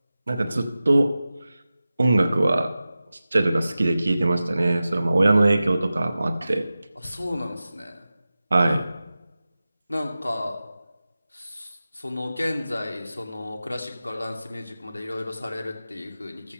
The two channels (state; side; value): inverted; both; correlation -0.95